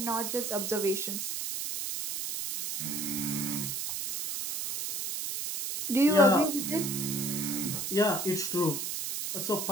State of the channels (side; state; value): right; noise; hiss, 3 dB below the sound